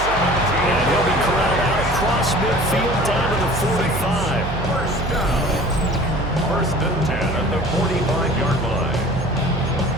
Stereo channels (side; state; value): right; noise; hum, 8 dB below the sound